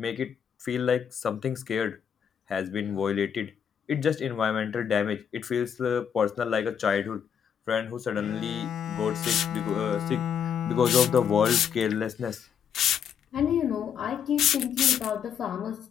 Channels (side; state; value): right; quieter; 8.0 dB